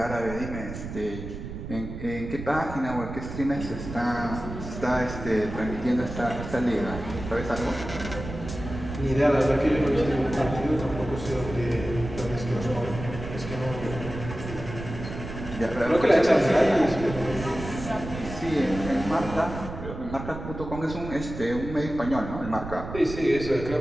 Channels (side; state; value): right; noise; rumble, 9 dB below the sound